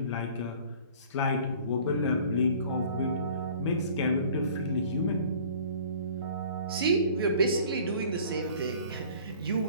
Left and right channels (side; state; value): both; inverted; correlation -0.49